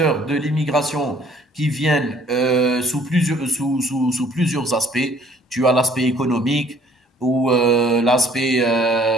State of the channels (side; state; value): both; normal; correlation 0.59